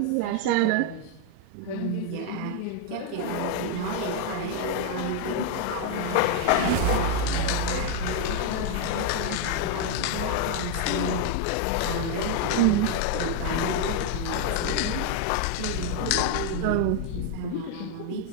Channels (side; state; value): both; different; correlation 0.01